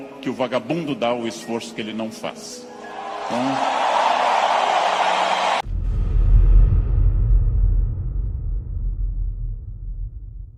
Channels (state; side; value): identical; both; correlation 1.00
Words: que o vagabundo dá ao esforço que ele não faz. Então,